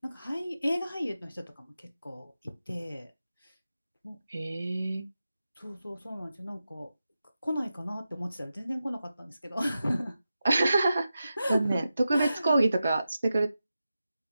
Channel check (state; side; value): inverted; both; correlation -0.91